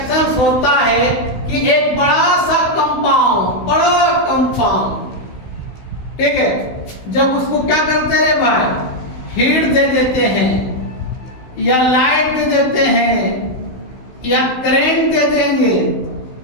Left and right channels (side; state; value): right; late; 16 ms